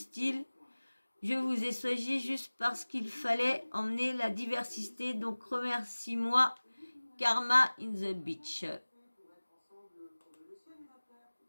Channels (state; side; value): inverted; both; correlation -1.00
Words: « Je vous ai choisi juste parce qu'il fallait emmener la diversité, donc remercie-moi, Karma in the beach ».